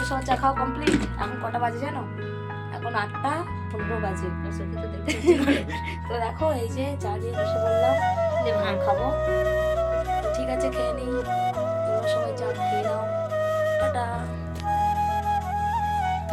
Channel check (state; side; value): identical; both; correlation 1.00